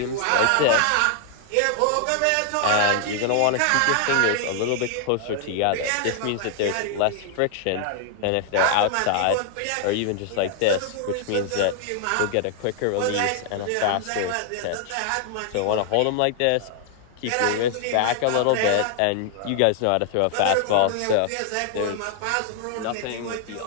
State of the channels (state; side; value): different; both; correlation 0.00